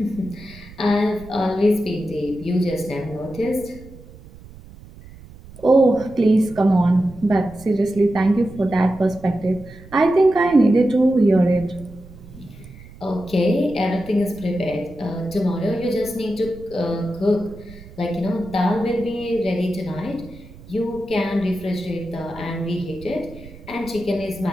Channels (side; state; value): right; noise; rumble, 19 dB below the sound